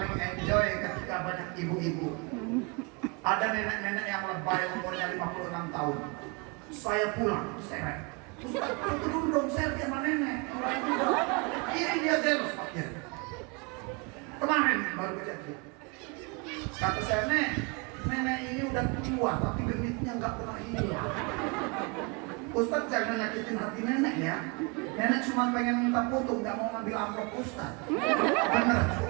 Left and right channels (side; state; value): left; quieter; 30.9 dB